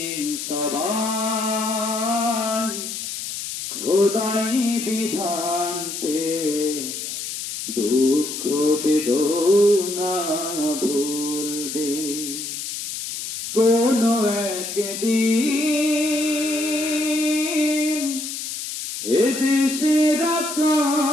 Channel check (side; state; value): left; noise; hiss, 6 dB below the sound